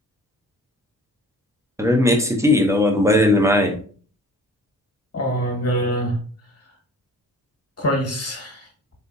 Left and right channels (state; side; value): normal; both; correlation 0.49